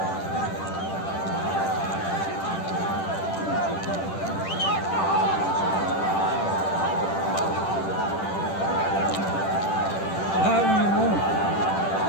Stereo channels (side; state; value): right; late; 10 ms